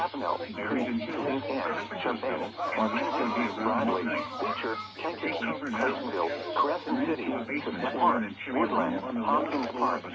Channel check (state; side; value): identical; both; correlation 1.00